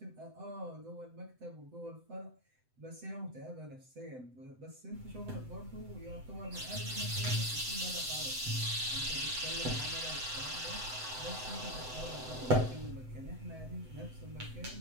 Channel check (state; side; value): late; left; 7.9 ms